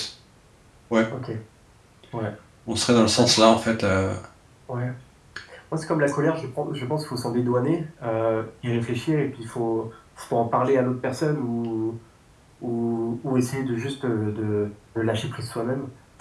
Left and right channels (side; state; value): both; identical; correlation 1.00